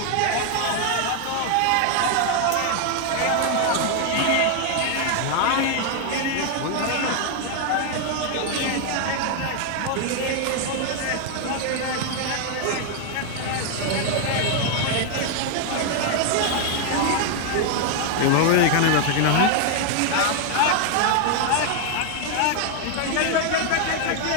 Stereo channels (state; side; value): different; both; correlation 0.01